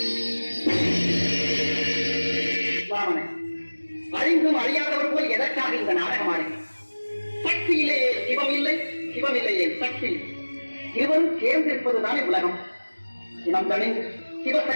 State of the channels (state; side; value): inverted; both; correlation -1.00